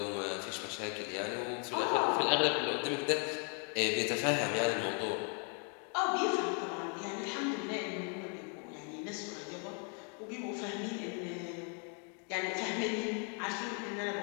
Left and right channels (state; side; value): quieter; right; 40.0 dB